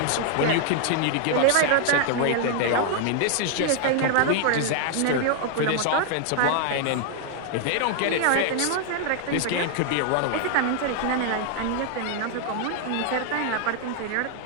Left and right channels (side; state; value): both; different; correlation 0.00